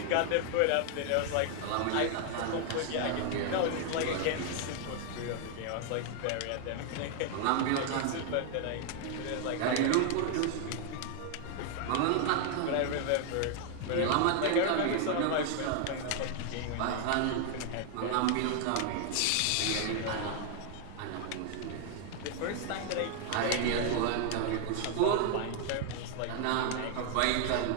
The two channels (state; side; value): different; both; correlation 0.00